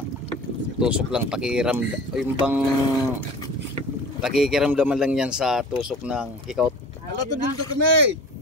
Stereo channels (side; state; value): both; normal; correlation 0.39